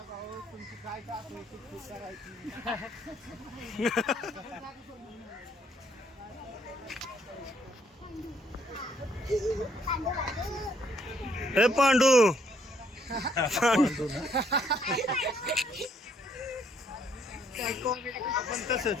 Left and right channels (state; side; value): normal; both; correlation 0.69